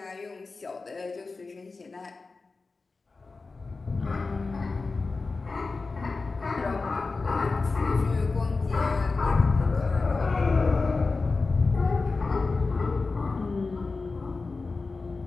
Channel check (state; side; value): quieter; right; 3.9 dB